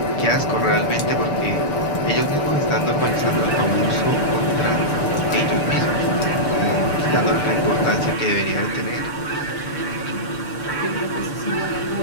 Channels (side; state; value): right; late; 6.8 ms